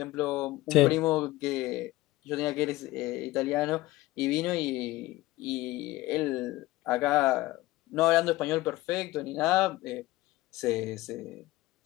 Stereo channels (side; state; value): right; quieter; 18.1 dB